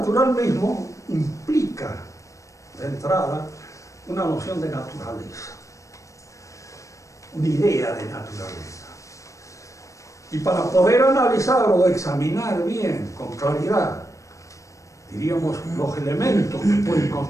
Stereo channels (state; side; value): late; right; 0.15 ms